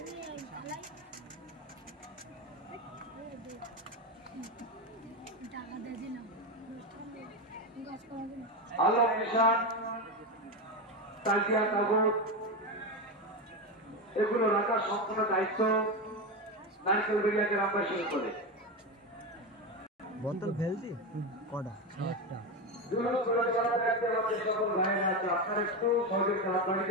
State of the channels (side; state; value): both; normal; correlation 0.15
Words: আলম নিশান তাজিয়া কাগজ এগুলো রাখার সম্পূর্ণ দায়িত্ব নারকেল বেরিয়া গ্রামবাসী করে বোতল ফেলছি কটা একটা আপনার একটু সহযোগিতা